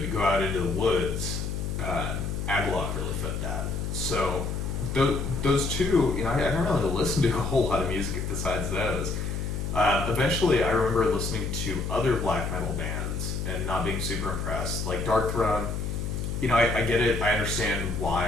go out into the woods, Agalloch really fit that. So those two, I don't really listen to a whole lot of music besides those. Eventually, I remember listening to other black metal bands and not being super impressed. Like Dark Throne, I get it. I understand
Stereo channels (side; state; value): left; noise; hum, 3 dB below the sound